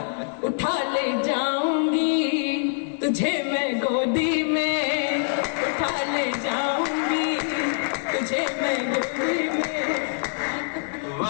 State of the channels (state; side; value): silent; right; 59 dB below the other